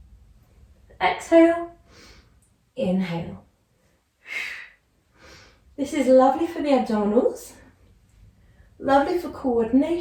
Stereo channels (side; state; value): both; identical; correlation 1.00